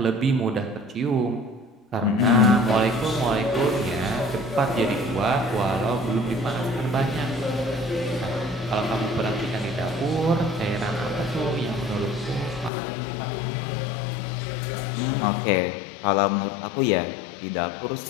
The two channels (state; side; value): drops out; right; at 12.7 s